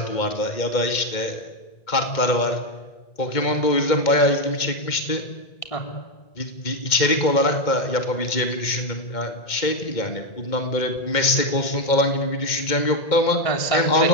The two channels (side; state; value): right; late; 2.1 ms